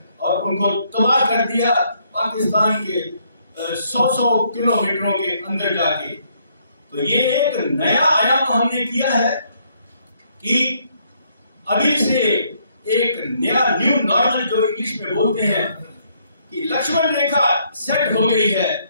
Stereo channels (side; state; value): both; inverted; correlation -0.70